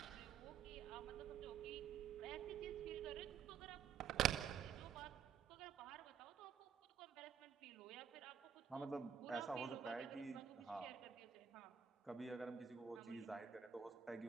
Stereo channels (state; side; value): quieter; left; 7.7 dB